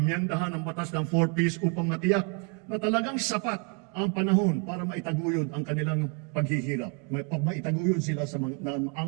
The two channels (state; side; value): quieter; left; 35.9 dB